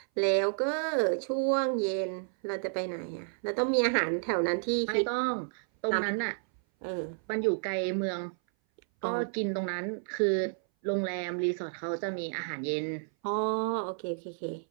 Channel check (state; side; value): silent; left; 57 dB below the other